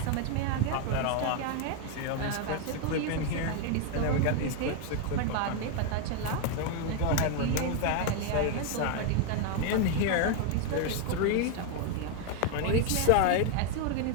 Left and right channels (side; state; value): both; different; correlation 0.01